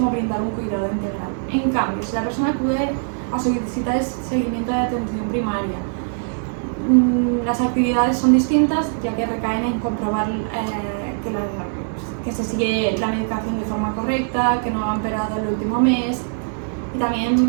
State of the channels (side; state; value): left; silent; digital silence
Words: brindar un cuidado integral. En cambio, si la persona acude a su visita de seguimiento de atención primaria, las actividades son distintas, ya que recaen en comprobar que se sigue la medicación de forma correcta, que no ha empeorado el último mes, y